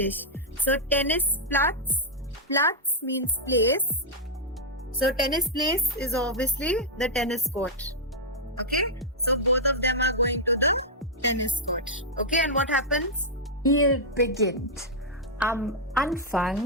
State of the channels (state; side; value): normal; both; correlation -0.05